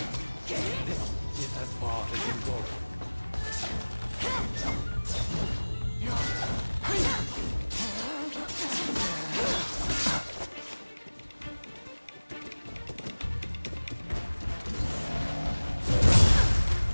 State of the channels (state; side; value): inverted; both; correlation -1.00